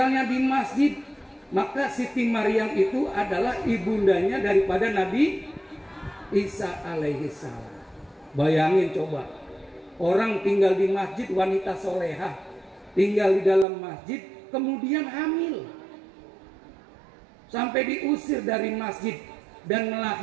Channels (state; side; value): drops out; left; at 13.7 s